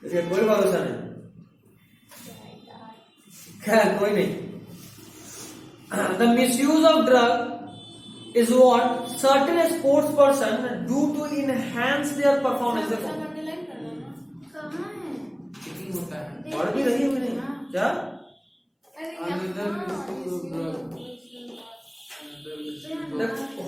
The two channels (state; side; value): identical; both; correlation 1.00